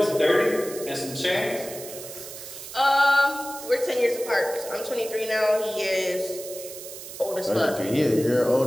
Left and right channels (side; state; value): right; noise; hiss, 12 dB below the sound